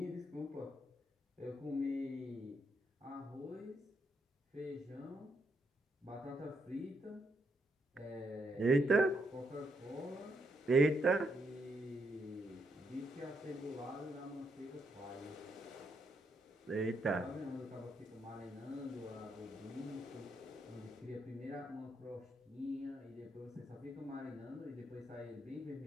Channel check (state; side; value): normal; both; correlation 0.78